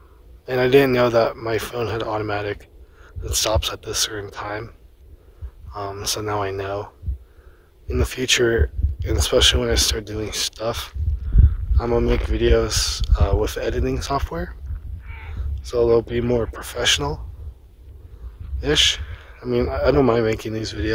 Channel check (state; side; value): identical; both; correlation 1.00